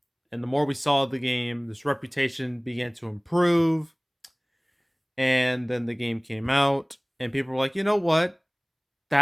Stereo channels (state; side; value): identical; both; correlation 1.00